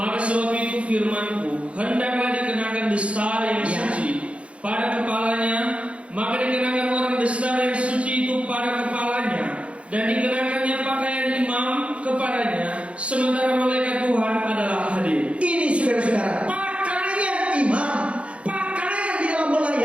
sebab itu firman-Ku, hendaklah dikenakan destar yang suci pada kepalanya, maka dikenakan orang destar yang suci itu pada kepalanya, dan dikenakannya pakaian imam kepadanya, sementara malaikat Tuhan adalah hadir. Ini saudara-saudara, pakaian imam, pakaian di dalam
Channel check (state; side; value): late; left; 0.061 ms